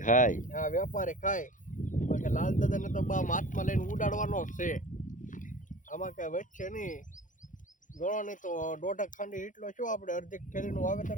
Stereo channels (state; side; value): late; right; 0.38 ms